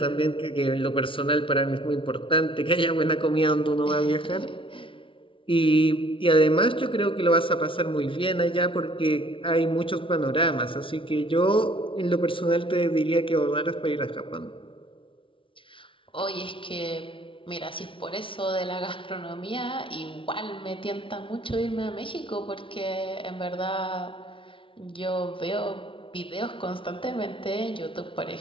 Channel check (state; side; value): late; right; 0.25 ms